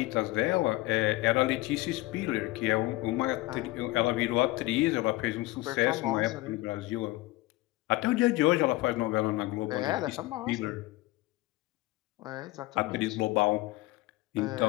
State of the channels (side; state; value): right; quieter; 19.4 dB